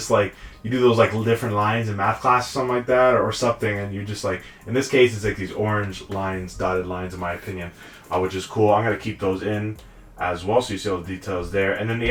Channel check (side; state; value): both; identical; correlation 1.00